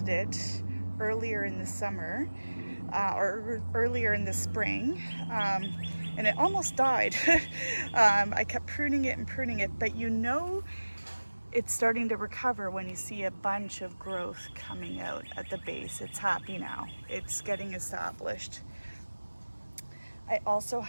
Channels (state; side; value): inverted; both; correlation -1.00